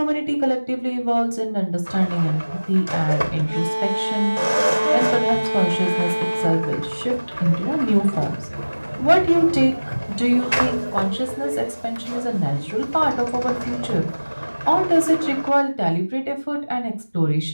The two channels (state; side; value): inverted; both; correlation -1.00